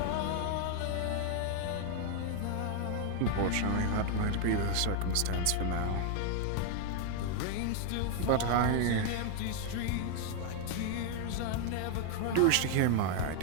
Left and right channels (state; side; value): different; both; correlation 0.00